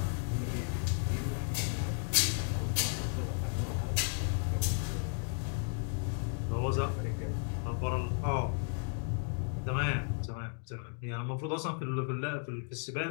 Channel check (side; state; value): right; silent; 55 dB below the other